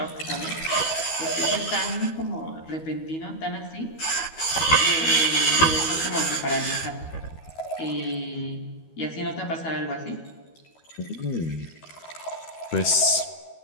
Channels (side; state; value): right; late; 12 ms